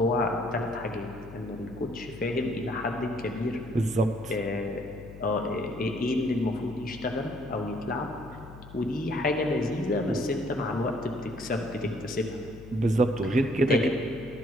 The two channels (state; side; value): noise; left; hum, 16 dB below the sound